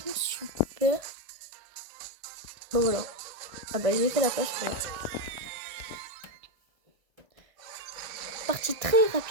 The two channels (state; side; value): late; left; 1.6 ms